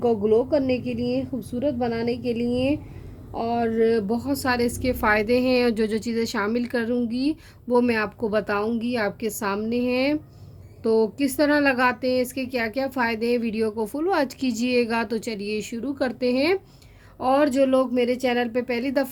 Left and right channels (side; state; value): both; identical; correlation 1.00